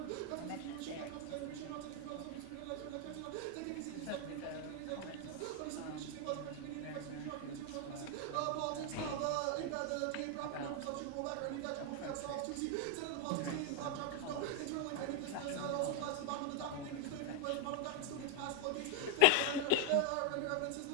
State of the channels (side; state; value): both; different; correlation 0.00